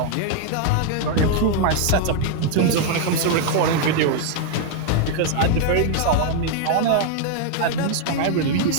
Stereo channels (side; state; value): both; different; correlation 0.00